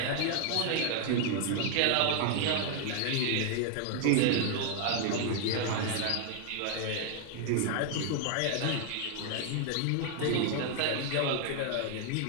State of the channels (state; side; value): different; both; correlation 0.00